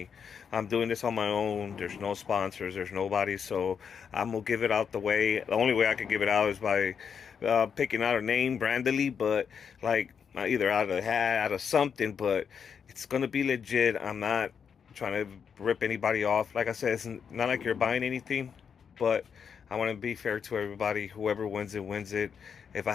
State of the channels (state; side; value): quieter; right; 6.9 dB